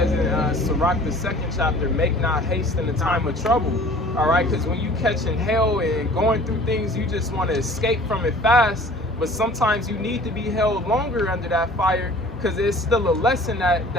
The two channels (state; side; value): normal; both; correlation 0.48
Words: in Sirach, the 2nd chapter, make not haste in the time of trouble. All right, because when you catching hell and going through things, you just want to escape from it fast. But sometimes you need to be held longer under that fire because it's still a lesson that